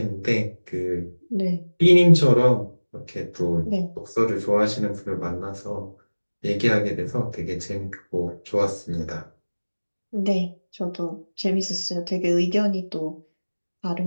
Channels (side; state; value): both; inverted; correlation -1.00